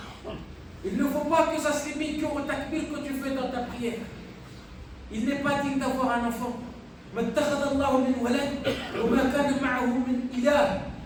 Il ne faut pas que ça se limite qu'au takbir que tu fais dans ta prière. Il n'est pas digne d'avoir un enfant. ما اتخذ الله من ولد وما كان معه من إله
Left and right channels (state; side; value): identical; both; correlation 1.00